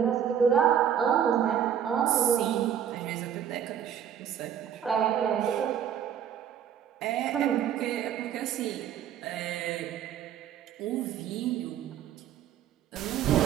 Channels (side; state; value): left; quieter; 9.2 dB